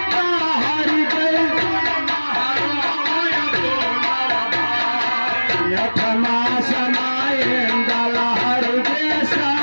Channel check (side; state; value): both; inverted; correlation -1.00